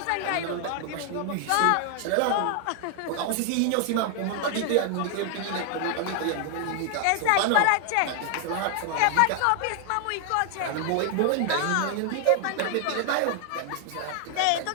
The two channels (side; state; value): both; different; correlation 0.00